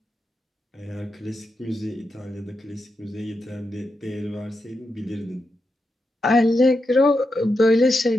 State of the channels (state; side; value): normal; both; correlation 0.87